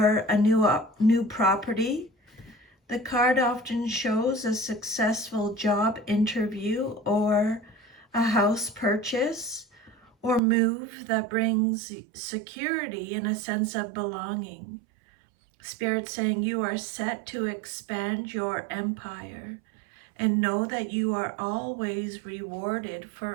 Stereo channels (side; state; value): left; drops out; at 10.4 s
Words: a new property. The card often shows a successful job interview or a house purchase or move that brings security and a sense of belonging. Spirit saying you are set to expand your empire, and know that you are always rewarded